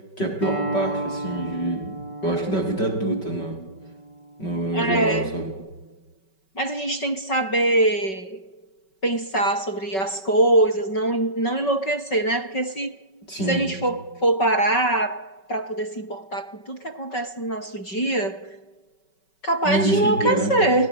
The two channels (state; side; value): late; right; 5.3 ms